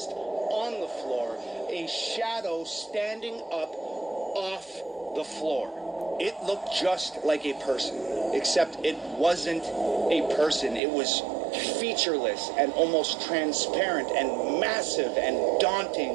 on the floor. A shadow standing up off the floor. It looked just like a person, except it wasn't a person. It was featureless and almost transparent and massive and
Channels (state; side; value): drops out; left; at 10.8 s